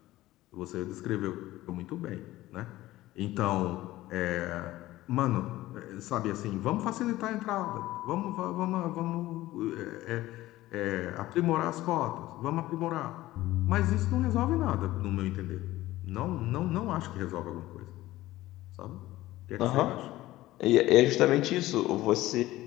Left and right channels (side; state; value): right; quieter; 16.5 dB